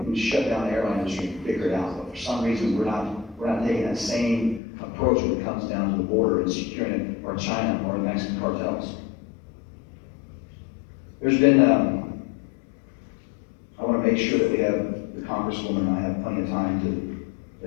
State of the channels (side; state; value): right; drops out; at 4.6 s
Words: shut down the airline industry and figure it out. But for some reason, we're not taking that same approach when it comes down to the border and securing it, or China, or the Mexican cartels. There's been, I want to make sure that we have the Congresswoman and I have plenty of time